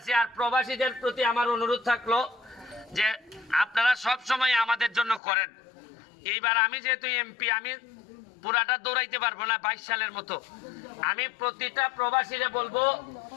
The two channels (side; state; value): right; drops out; at 5.2 s